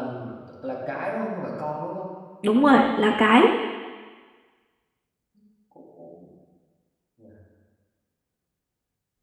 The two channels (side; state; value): both; identical; correlation 1.00